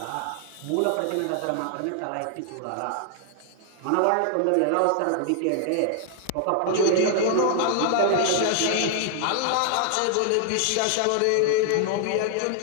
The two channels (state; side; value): different; both; correlation 0.00